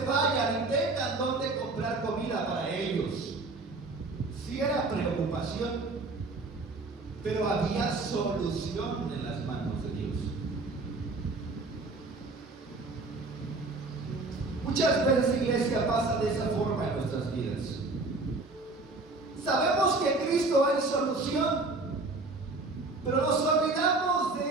vayan y tengan dónde comprar comida para ellos. Sí era preocupación, pero había solución en las manos de Dios. Muchas veces, iglesia, pasa de esa forma en nuestras vidas. Sabemos que Cristo es solución, pero nos olvidamos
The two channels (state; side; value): quieter; left; 3.4 dB